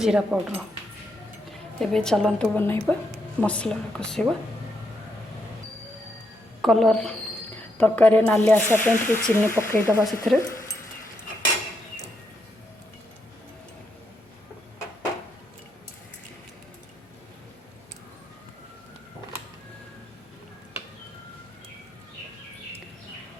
पाउडर। एबे चलतु बनइबा मसला कषा कलर तरकारी नाली आसापी चीनी पकईदबा से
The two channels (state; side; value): normal; both; correlation 0.80